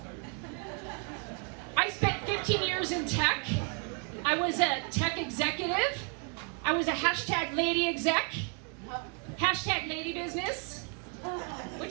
I spent 15 years in tech. I was a tech executive. I was a hashtag lady exec. Hashtag lady business,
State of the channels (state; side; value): quieter; left; 36.6 dB